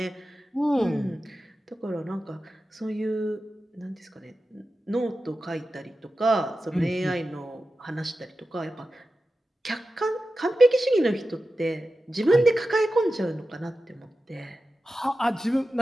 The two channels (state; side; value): normal; both; correlation 0.93